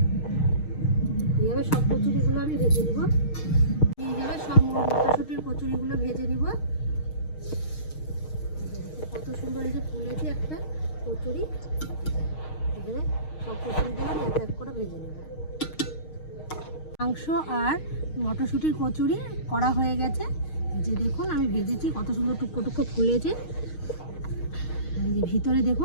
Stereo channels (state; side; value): late; right; 6.5 ms